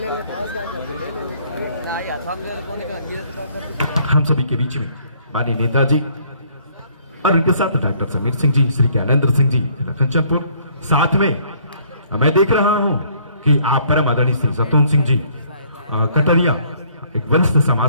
हम सभी के बीच में माननीय नेताजी और उनके साथ डॉक्टर समीर सिंह जी, श्री ज्ञानेंद्र सिंह जी कंचनपुर, साथ में मैं देख रहा हूं कि आप परम आदरणीय श्री सतून सिंह जी कटरिया एक वरिष्ठ समाज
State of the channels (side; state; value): both; inverted; correlation -0.62